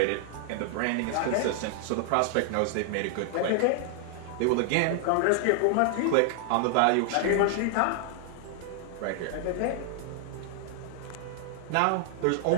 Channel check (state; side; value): different; both; correlation 0.00